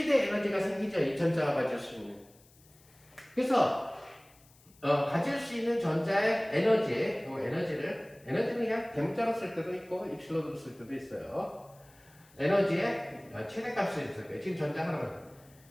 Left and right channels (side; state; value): left; noise; hiss, 28 dB below the sound